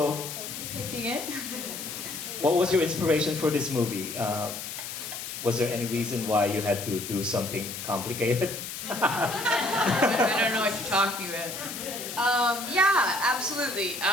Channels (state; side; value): noise; left; hiss, 8 dB below the sound